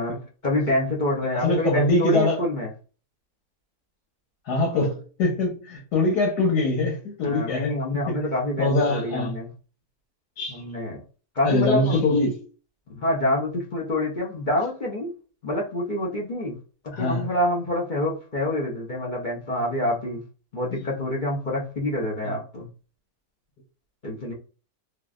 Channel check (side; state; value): both; normal; correlation -0.06